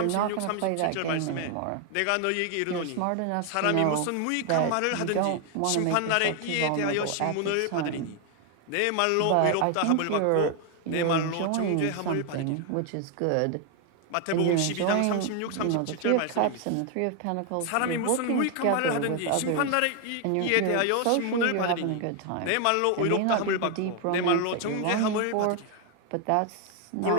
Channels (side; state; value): both; different; correlation 0.01